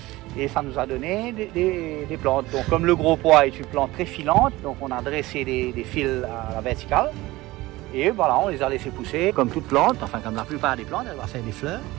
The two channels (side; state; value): left; quieter; 19.2 dB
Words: et ça nous a donné des plantes. Donc comme le gros pois est une plante très filante, donc on a dressé des fils à la verticale. Et voilà, on les a laissés pousser comme toute plante, enfin comme la plupart des plantes, elle va faire des fleurs.